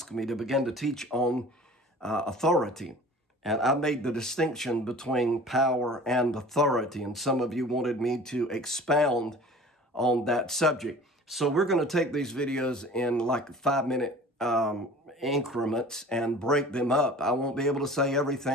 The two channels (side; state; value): both; normal; correlation 0.44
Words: me to begin to teach on authority. And I made the distinction between power and authority. And some of you wanted me to expound on that subject. So we're going to take these videos in like 5-minute increments and break them up. I won't be able to say